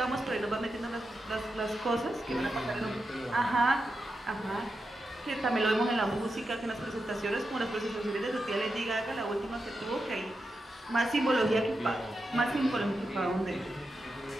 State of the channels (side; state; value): both; normal; correlation 0.88